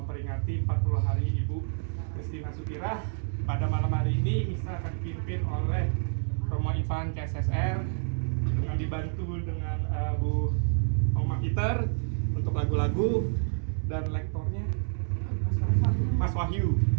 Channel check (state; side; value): silent; left; digital silence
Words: 40 hari Ibu Christina Sukirah. Pada malam hari ini misa akan dipimpin oleh Romo Ivan KSSR dengan dibantu dengan Bu Oma Peter untuk lagu-lagu dan lektornya Mas Wahyu.